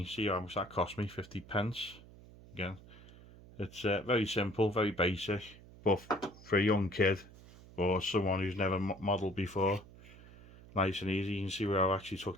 see how much that cost me, 50p. Again, it's very simple, very basic, but for a young kid or someone who's never modelled before, nice and easy. You can see where I actually took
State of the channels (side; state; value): right; noise; hum, 20 dB below the sound